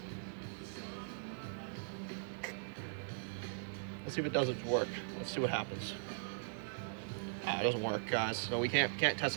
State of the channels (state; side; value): silent; left; digital silence